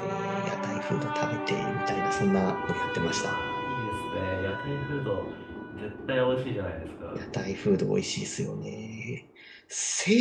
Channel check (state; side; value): identical; both; correlation 1.00